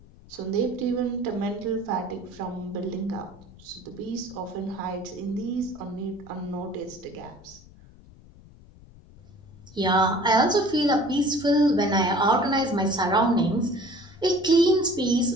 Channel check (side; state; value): left; noise; rumble, 22 dB below the sound